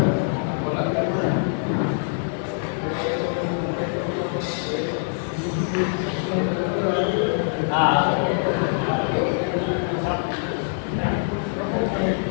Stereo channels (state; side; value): silent; right; digital silence